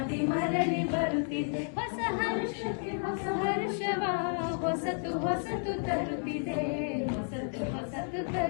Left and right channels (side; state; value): right; silent; 57 dB below the other